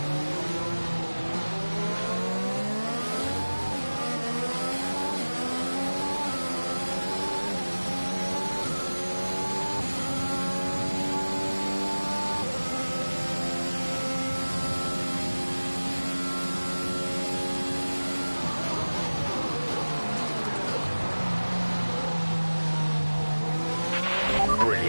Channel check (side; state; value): both; inverted; correlation -1.00